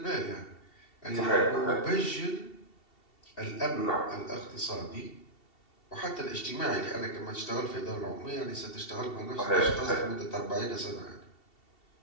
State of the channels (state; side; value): late; right; 2.7 ms